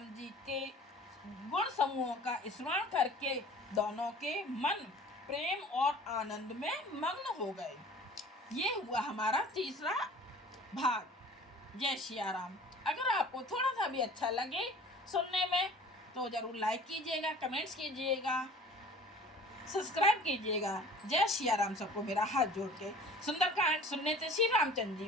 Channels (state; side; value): normal; both; correlation 0.46